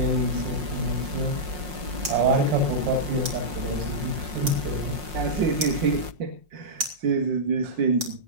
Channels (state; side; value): late; left; 5.5 ms